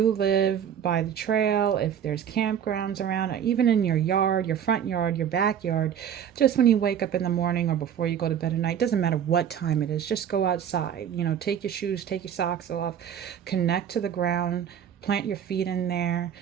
live by the trail, if there's campgrounds around, or even in your yard, your front yard, your backyard, just when you wake up in the morning or before you go to bed at night, doesn't matter what time it is, just go outside, take your shoes, take your socks off, connect to the ground, plant your feet in there,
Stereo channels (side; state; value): left; quieter; 8.9 dB